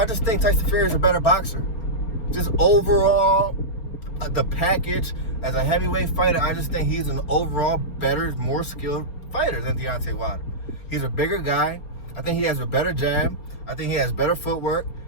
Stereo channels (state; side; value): late; right; 4.3 ms